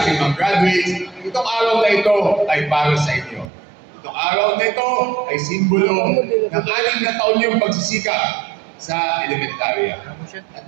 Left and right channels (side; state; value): left; drops out; at 3.5 s